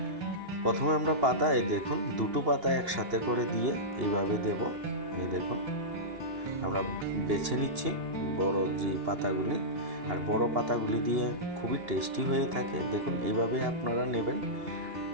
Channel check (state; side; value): late; left; 2.8 ms